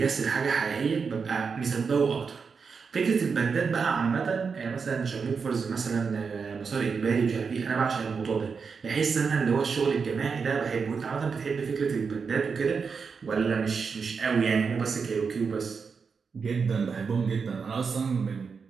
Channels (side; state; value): left; quieter; 5.5 dB